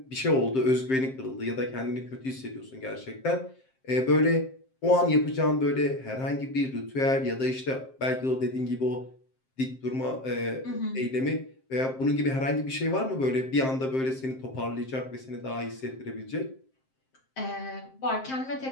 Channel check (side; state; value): right; late; 7.6 ms